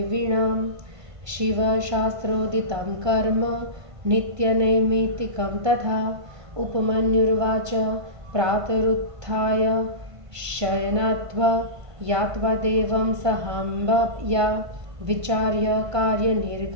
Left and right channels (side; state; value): left; late; 1.5 ms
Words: शिवशास्त्रोदितं कर्म नित्यनैमित्तिकं तथा। उपमन्युर्वाच प्रातरुत्थाय शयनात्वा यात्वा देवं सहाम्बया विचार्य